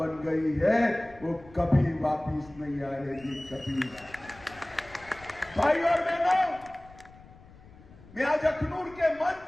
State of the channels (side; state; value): left; noise; rumble, 22 dB below the sound